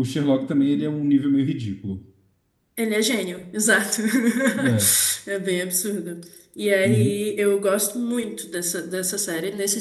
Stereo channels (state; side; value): identical; both; correlation 1.00